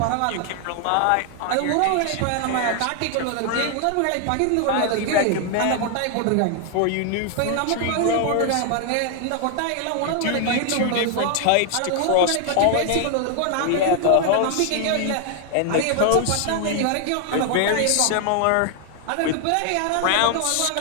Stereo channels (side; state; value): both; different; correlation 0.00